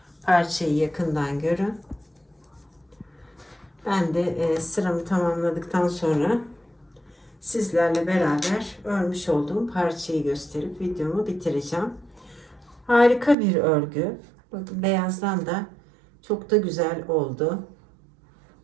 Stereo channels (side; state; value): left; drops out; at 13.4 s